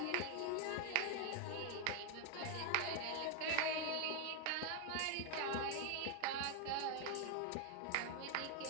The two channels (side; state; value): both; different; correlation 0.01